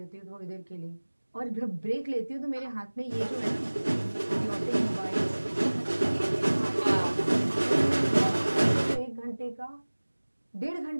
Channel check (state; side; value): inverted; both; correlation -1.00